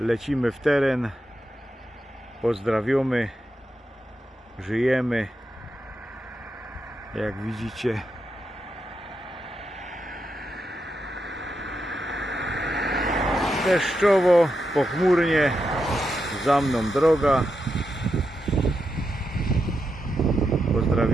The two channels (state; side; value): normal; both; correlation 0.86